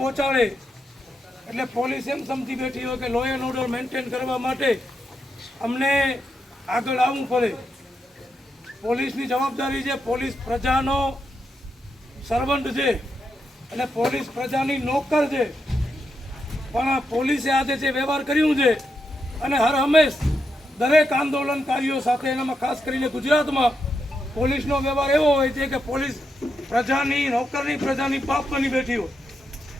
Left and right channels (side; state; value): both; normal; correlation 0.84